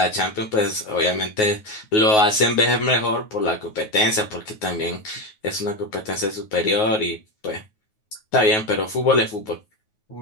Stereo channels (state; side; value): late; right; 9.4 ms